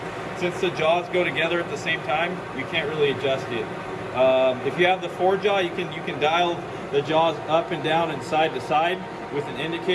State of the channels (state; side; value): identical; both; correlation 1.00